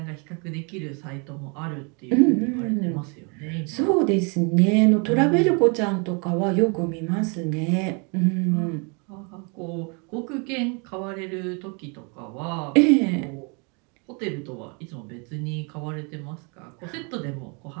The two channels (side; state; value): left; quieter; 34.3 dB